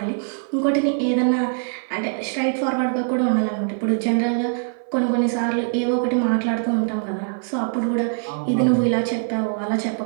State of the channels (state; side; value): silent; left; 57 dB below the other